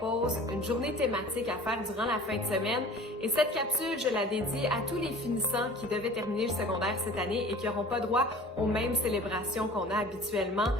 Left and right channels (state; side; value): normal; both; correlation 0.43